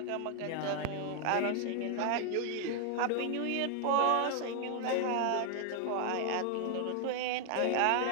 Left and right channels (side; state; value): both; different; correlation 0.00